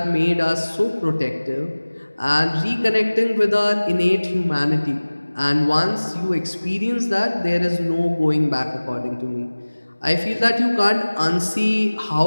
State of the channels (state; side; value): inverted; both; correlation -1.00